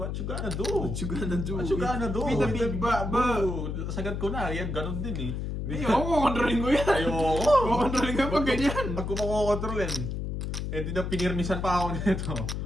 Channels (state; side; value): noise; left; hum, 3 dB below the sound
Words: what you gonna do? What you gonna do? What you gonna do? With the big ba? Sagad ko na. Yan, ganun din eh. Hindi, ako kukontrolin ko yan. Ayoko. Kukontrolin ko pag ganyan. Pag kumakokontrolin, eh di na pinirmisan pa ako nito.